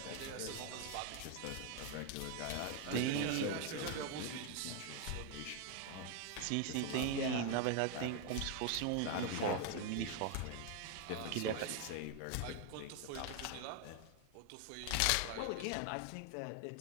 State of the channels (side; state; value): both; different; correlation 0.00